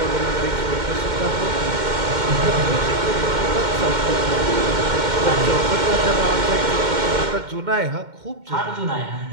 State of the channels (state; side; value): late; left; 2.1 ms